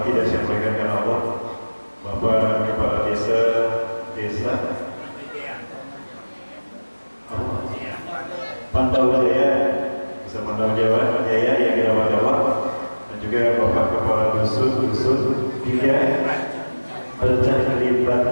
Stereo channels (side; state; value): both; inverted; correlation -1.00